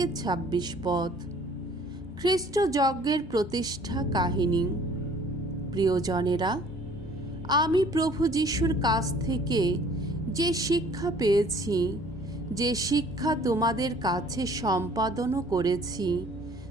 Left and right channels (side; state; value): both; normal; correlation 0.54